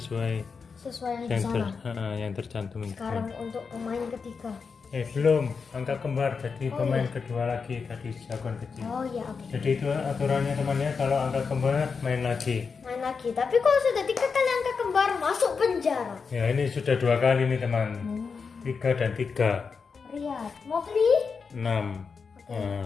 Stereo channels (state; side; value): quieter; right; 5.3 dB